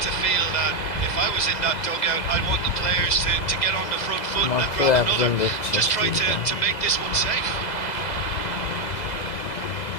to feel that if I was in that dugout, I'd want the players to get on the front foot and grab another. Just try to make this one safe.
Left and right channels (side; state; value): right; late; 2.0 ms